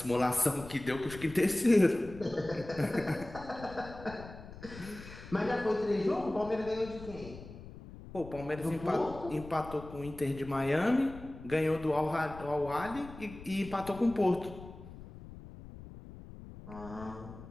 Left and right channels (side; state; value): left; noise; rumble, 15 dB below the sound